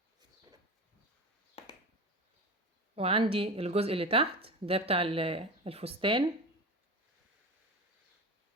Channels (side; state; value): both; normal; correlation 0.27